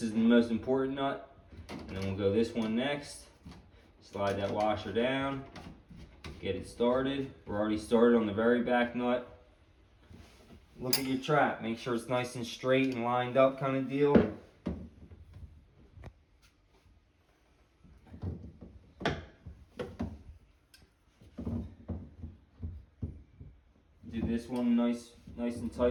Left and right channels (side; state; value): both; identical; correlation 1.00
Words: is the most important nut. And then we'll go this one next. Slide that washer down, get it started. We're already started on the very back nut. Look at your trap, make sure it's nice and straight and lined up kind of deal. Do this one nice and